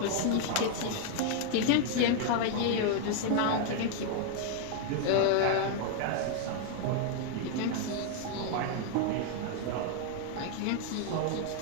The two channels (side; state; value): both; different; correlation 0.00